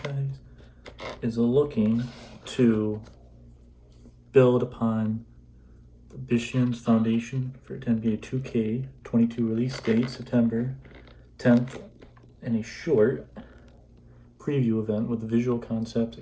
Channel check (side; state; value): both; identical; correlation 1.00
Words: is looking to build upon the Bishan's foundation for NBA 2K22 release date, September 10th, in a short preview event with visual concepts.